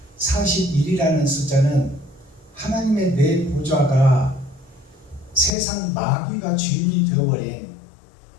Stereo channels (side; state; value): right; drops out; at 5.5 s